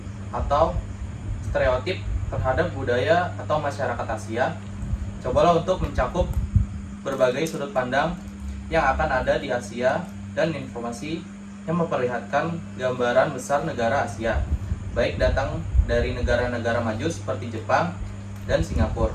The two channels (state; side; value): identical; both; correlation 1.00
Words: atau stereotip terhadap budaya atau masyarakat Asia. Cobalah untuk mencakup berbagai sudut pandang yang akan ada di Asia dan informasi yang memperlihatkan gambaran besar negara Asia, baik datang dari negara-negara maju seperti Jepang dan Singapura,